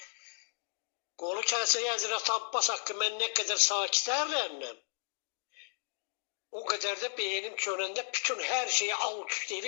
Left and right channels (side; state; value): right; silent; digital silence